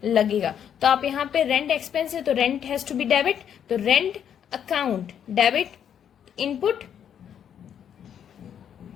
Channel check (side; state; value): right; quieter; 8.9 dB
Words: लगेगा। तो आप यहाँ पे रेंट एक्सपेंस है तो rent has to be debit, तो rent account debit, input